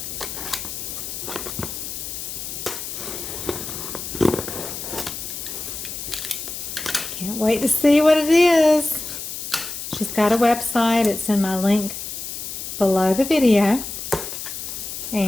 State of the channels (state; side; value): noise; left; hiss, 7 dB below the sound